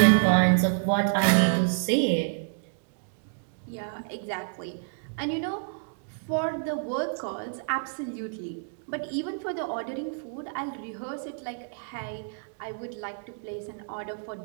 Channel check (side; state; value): left; silent; digital silence